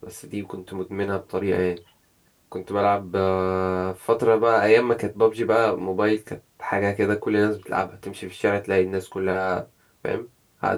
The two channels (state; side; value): identical; both; correlation 1.00